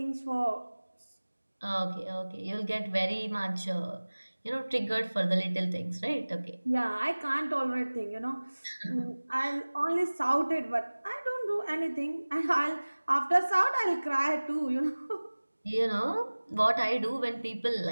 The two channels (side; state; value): both; inverted; correlation -1.00